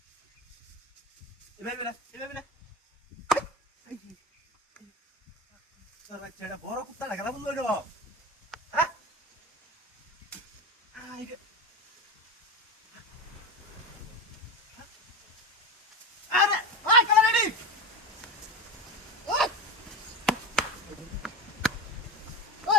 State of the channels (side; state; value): both; normal; correlation 0.23